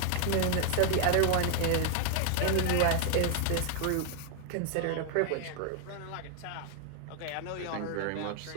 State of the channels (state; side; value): different; both; correlation 0.00